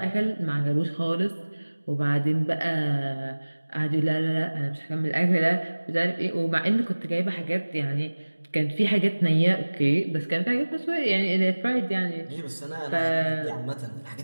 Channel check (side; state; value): both; inverted; correlation -1.00